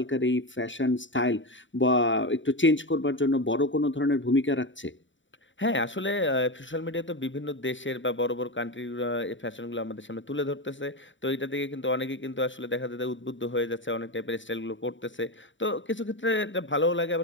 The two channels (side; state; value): right; late; 0.55 ms